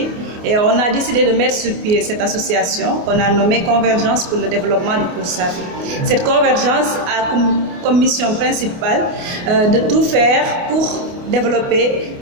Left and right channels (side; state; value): left; late; 28 ms